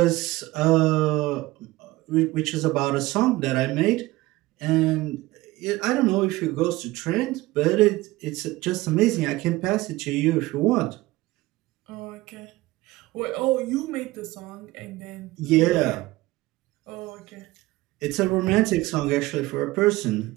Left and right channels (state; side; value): quieter; left; 19.2 dB